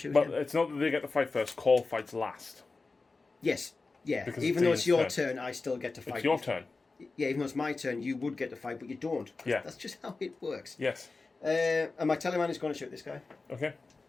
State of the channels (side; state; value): right; quieter; 3.8 dB